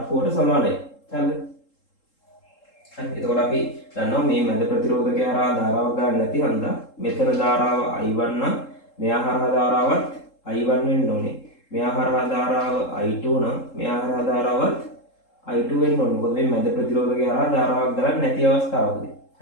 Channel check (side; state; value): right; late; 3.7 ms